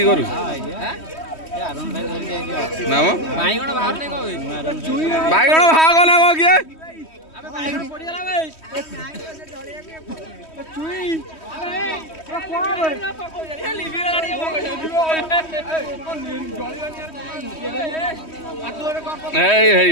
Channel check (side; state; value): right; late; 3.1 ms